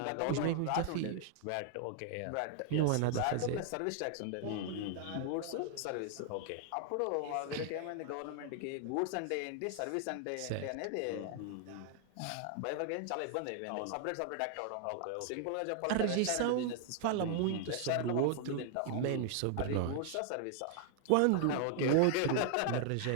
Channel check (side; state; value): both; different; correlation 0.00